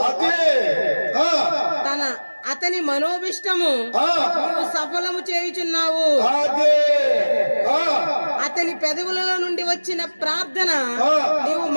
అతని మనోభిష్టము నీవు సఫలము చేయుచున్నావు. అతని పెదవులలో నుండి వచ్చిన ప్రార్థన నీవు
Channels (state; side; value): inverted; both; correlation -1.00